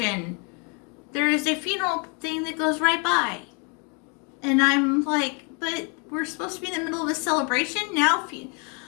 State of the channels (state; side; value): quieter; right; 35.3 dB